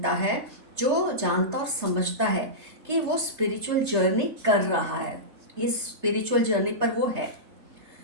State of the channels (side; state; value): left; late; 3.3 ms